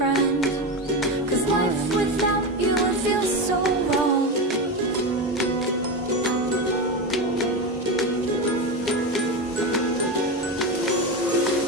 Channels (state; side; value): normal; both; correlation 0.17